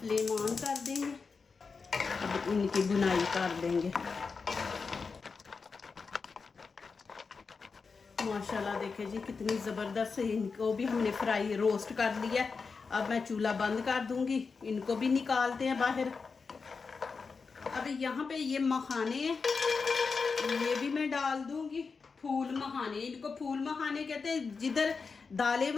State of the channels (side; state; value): right; quieter; 4.9 dB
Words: ऑन कर देंगे, अब इनकी बुनाई कर देंगे। माशाल्लाह देखे जी कितनी ज़बरदस्त, इनको भी हमने फ्राई रोस्ट कर लिया। अब मैं चूल्हा बंद कर दूंगी, इनको भी निकालते हैं बाहर। अब यहाँ पे ये मखाने हैं, ये भी मैं डाल दूंगी। फूल मखाने, इनको फूल मखाने कहते हैं। जिधर दालें